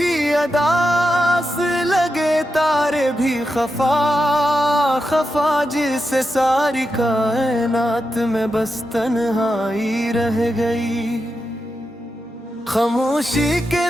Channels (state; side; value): normal; both; correlation 0.88